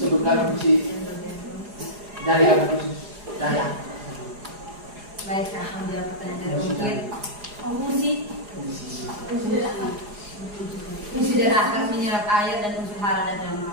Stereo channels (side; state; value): left; late; 4.8 ms